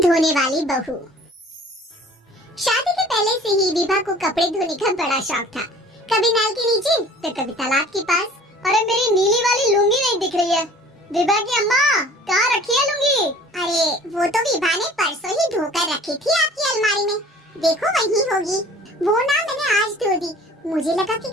धोने वाली बहू। शादी के पहले से ही विभा को कपड़े धोने का बड़ा शौक था। कभी नल के नीचे तो कभी तालाब के पास। अरे मेरी नीली वाली लुंगी नहीं दिख रही है। विभा की अम्मा, कहाँ रखी है लुंगी? अरे वो तो विभा ने परसों ही धोकर रखी थी आपकी अलमारी में, देखो वही होगी। वो ना मैंने आज धो दी, मुझे लगा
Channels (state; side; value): normal; both; correlation 0.48